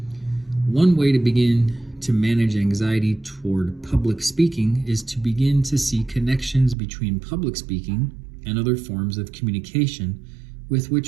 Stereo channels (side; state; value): left; drops out; at 6.8 s